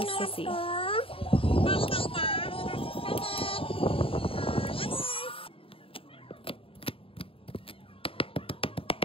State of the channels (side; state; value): right; late; 0.27 ms